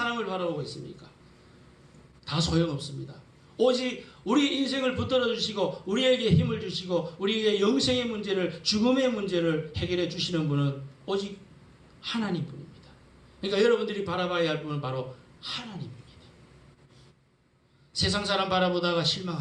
바라보고 있습니까? 다 소용없습니다. 오직 우리 인생을 붙들어 주시고 우리에게 힘을 주시고 우리에게 영생의 문제를, 죽음의 문제를 해결해 주시는 분은 오직 하나님뿐입니다. 그러니까 여러분들이 바라봐야 할 분은 바로 하나님입니다. 세상 사람 바라보다가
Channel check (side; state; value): both; identical; correlation 1.00